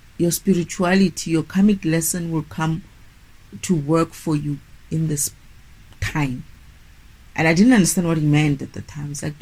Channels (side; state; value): both; identical; correlation 1.00